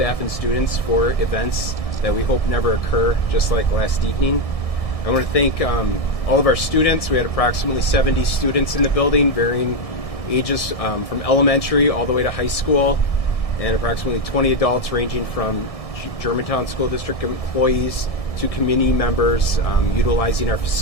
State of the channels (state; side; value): late; right; 1.7 ms